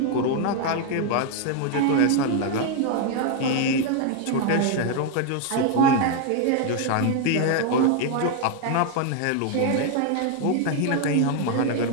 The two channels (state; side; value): different; both; correlation 0.00